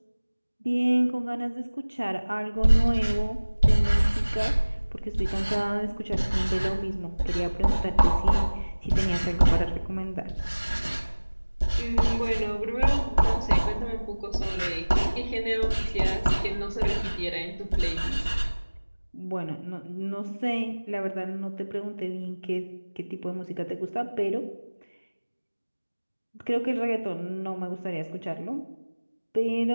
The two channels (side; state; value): both; inverted; correlation -1.00